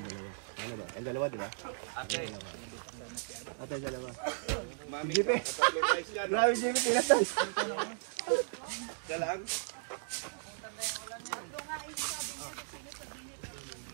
Ang dalawa, di ba? Okay. Ate, dalawa. Jipe. Grabe, Jipe, pinatas. Galang.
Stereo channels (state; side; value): silent; left; digital silence